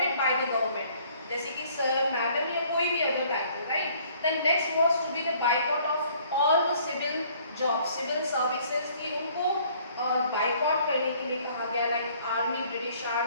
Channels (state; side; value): inverted; both; correlation -0.59